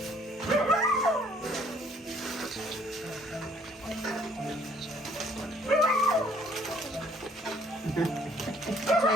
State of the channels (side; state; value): both; normal; correlation 0.61